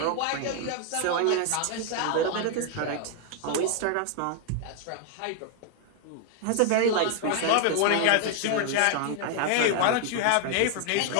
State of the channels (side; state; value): both; different; correlation 0.00